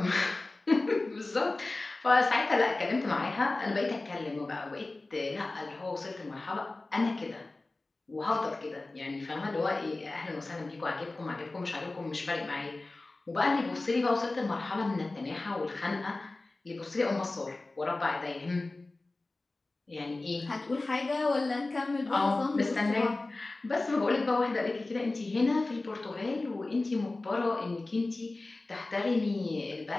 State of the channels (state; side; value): quieter; right; 3.1 dB